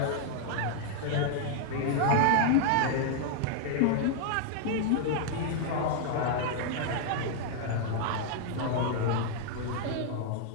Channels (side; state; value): both; different; correlation 0.00